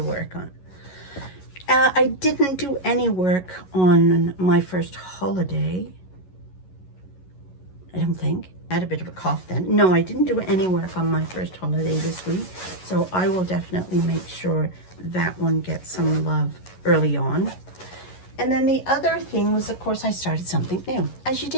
work on. I didn't do any work on my first holiday. I don't think. I had a bit of a cough then. No, I didn't do any work on my first holiday this week. So I will definitely make sure that one gets some love early on. And then the other thing was, of course, I started something new. As you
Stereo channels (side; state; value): right; late; 11 ms